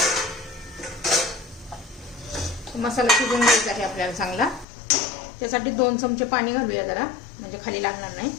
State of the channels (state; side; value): drops out; right; at 4.7 s